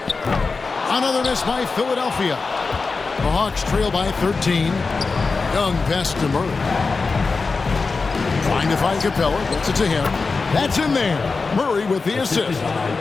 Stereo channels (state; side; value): quieter; right; 4.3 dB